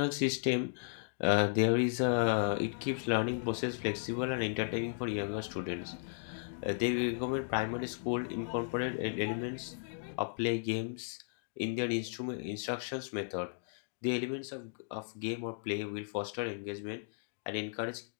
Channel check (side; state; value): right; silent; digital silence